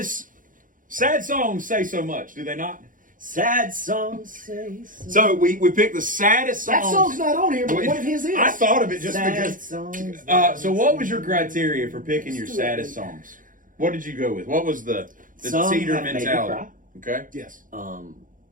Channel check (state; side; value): late; left; 0.39 ms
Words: songs say so much, do they not? Sad songs say so. So we picked the saddest songs. That song's not on here, but what if his is? I thought of it just Sad because. songs. So what was your criteria for picking your saddest songs? What did you go with? What was the Some cedar have made me mentality? cry. Okay. Yes.